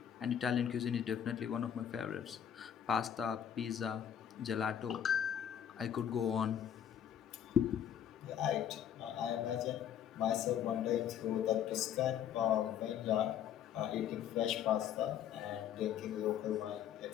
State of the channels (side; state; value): right; quieter; 9.5 dB